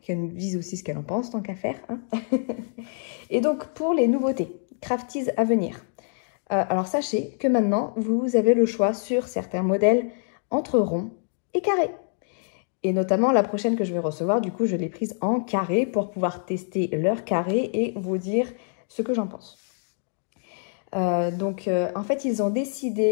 Qu'elle nous dise aussi ce qu'elle en pense, tant qu'à faire. Hein. Et donc, pour les nouveautés, Crafties à venir. Alors, sachez que maintenant, vous avez le choix sur certains modèles entre rond et carré. Et notamment, la prochaine que je vais recevoir, du coup, je l'ai prise en carré pour pouvoir tester leur carré et vous dire ce que j'en pense. En fait, ils ont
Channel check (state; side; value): silent; right; digital silence